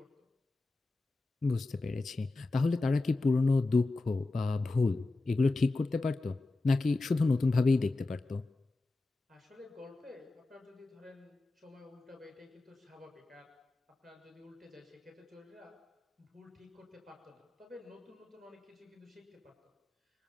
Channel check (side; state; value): right; quieter; 3.2 dB